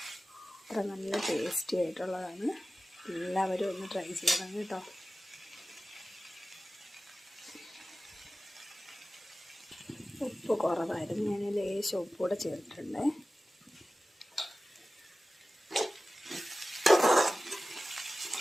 അത്ര നല്ല ടേസ്റ്റി ആയിട്ടുള്ളതാണ്. എല്ലാവരും ഒന്ന് ട്രൈ ചെയ്യണം കേട്ടോ. ഉപ്പ് കുറവായിരുന്നു, ഞാൻ ലേശം ഉപ്പൂടെ ചേർത്തിട്ടുണ്ട്.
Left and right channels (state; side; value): normal; both; correlation 0.95